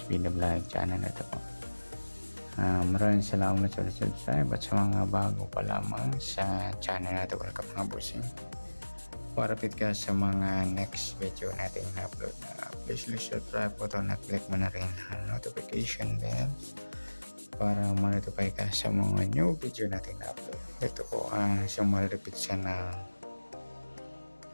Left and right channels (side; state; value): both; inverted; correlation -1.00